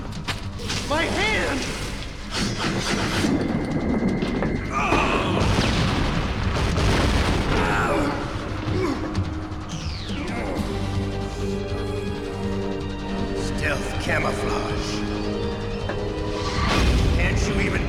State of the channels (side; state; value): both; identical; correlation 1.00